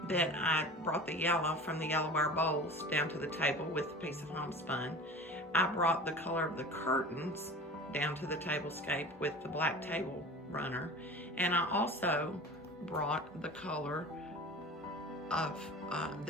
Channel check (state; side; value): normal; both; correlation 0.37